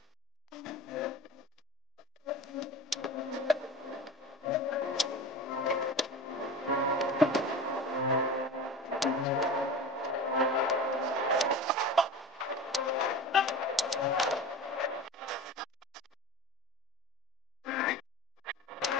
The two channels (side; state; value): both; normal; correlation 0.32